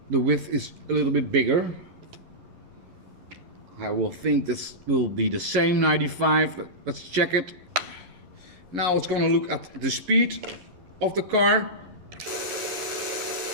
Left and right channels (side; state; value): left; late; 11 ms